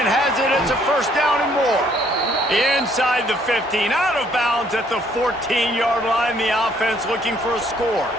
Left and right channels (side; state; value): both; normal; correlation 0.65